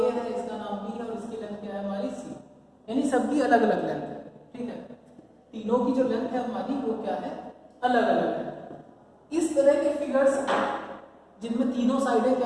है, इसका नाम बी है और इसकी लेंथ क्या है हमारी सी, यानी सबकी अलग अलग लेंथ है, ठीक है। तीनों की जो लेंथ है हमारी वो क्या है, अलग अलग है। इस तरह के फिगर्स जिनमें तीनों साइडें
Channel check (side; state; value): both; identical; correlation 1.00